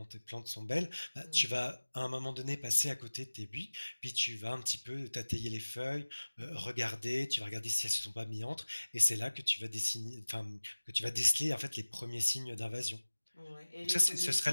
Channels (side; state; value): both; inverted; correlation -1.00